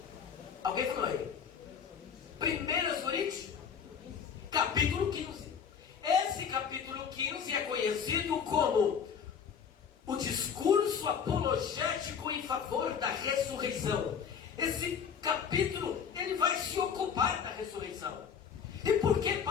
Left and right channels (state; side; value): quieter; right; 7.1 dB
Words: Alguém falou aí? 1 Coríntios, capítulo 15. Esse capítulo 15 é conhecido como o discurso apologético em favor da ressurreição. Esse capítulo, ele vai se ocupar da ressurreição. E por que